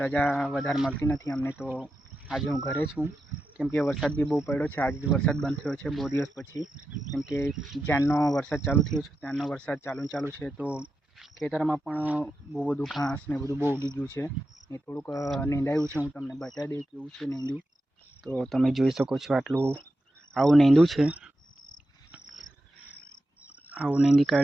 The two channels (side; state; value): both; normal; correlation 0.89